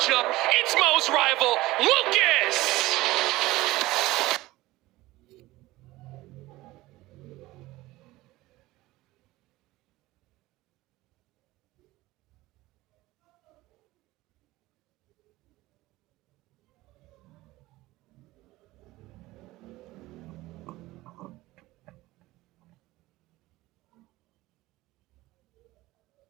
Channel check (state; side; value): quieter; left; 18.5 dB